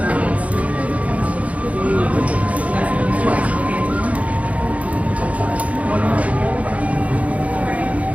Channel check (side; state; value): left; late; 0.067 ms